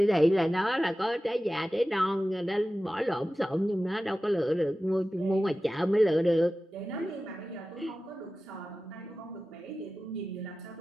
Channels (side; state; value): both; normal; correlation 0.95